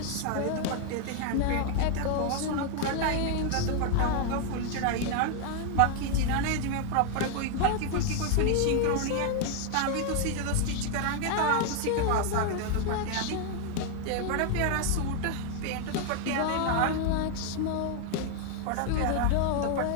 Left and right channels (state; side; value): different; both; correlation 0.00